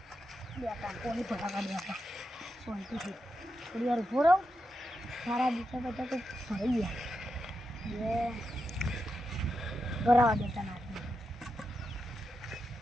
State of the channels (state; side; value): normal; both; correlation 0.87